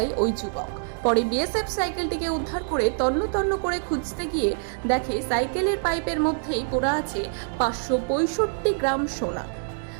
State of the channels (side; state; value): left; silent; 60 dB below the other